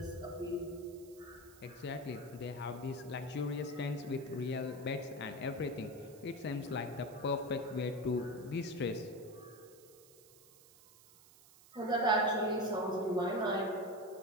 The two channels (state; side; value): noise; right; hiss, 23 dB below the sound